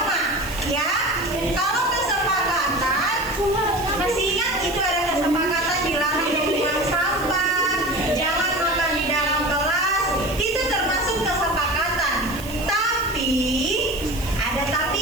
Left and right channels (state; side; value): noise; right; hiss, 15 dB below the sound